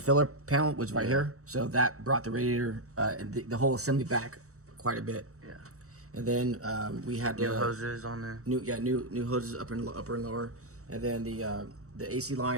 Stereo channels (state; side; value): late; left; 0.65 ms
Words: filler panel was right here. So that brought the radiator and the whole assembly back quite a bit. Yeah. And then we had New hoses on there. new hoses upper and lower, and then the AC